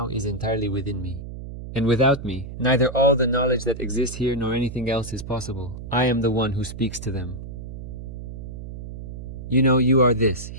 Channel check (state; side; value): noise; right; hum, 10 dB below the sound